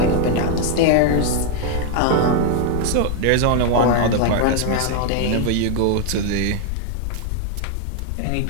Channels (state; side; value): different; both; correlation 0.01